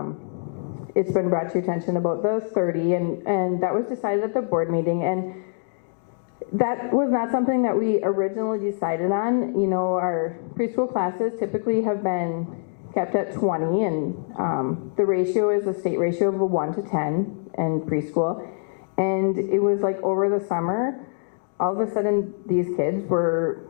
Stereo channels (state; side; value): silent; right; digital silence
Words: it's been brought to your attention about the 30, and that was decided at the board meeting, and that was not something that we originally decided on. Our preschool classes typically have been kept at 20, and the ratio is a state ratio of 1 to 10 in preschool. And it was like over the summer, all of a sudden these kids were